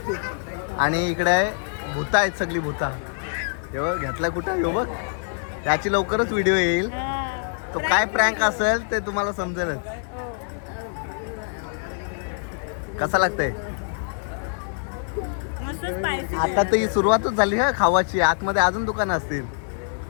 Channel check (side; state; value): right; silent; 62 dB below the other